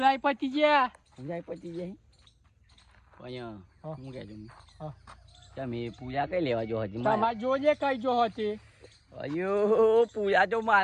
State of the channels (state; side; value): identical; both; correlation 1.00